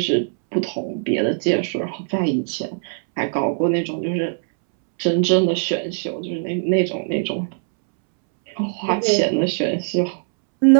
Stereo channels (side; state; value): left; silent; 65 dB below the other